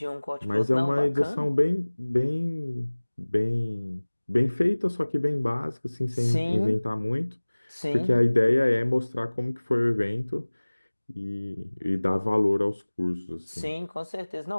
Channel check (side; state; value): both; inverted; correlation -1.00